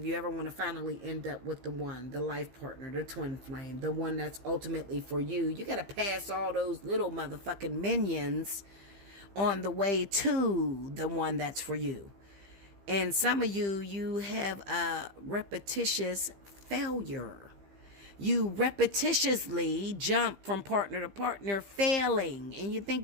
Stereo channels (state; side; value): late; left; 15 ms